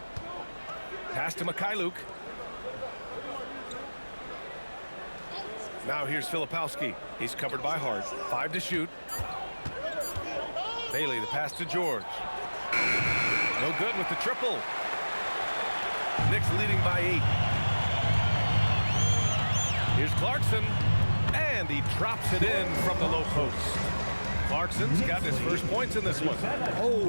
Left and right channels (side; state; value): both; inverted; correlation -1.00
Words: Pass to Mikhailuk. Now here's Filipowski. He's covered by Hart. 5 to shoot. Bailey, the pass to George. No good with the triple. Knicks leading by 8. Here's Clarkson. And he drops it in from the low post. Clarkson's got his first points in this one.